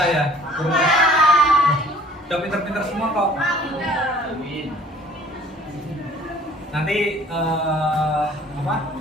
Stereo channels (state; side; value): normal; both; correlation 0.53